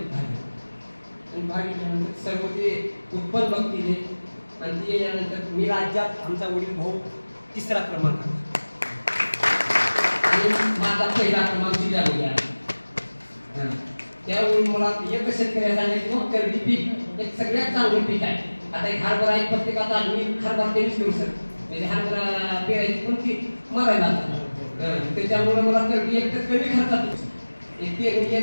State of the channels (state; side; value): inverted; both; correlation -1.00